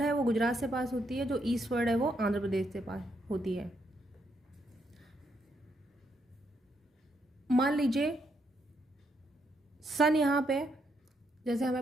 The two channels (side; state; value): both; normal; correlation 0.77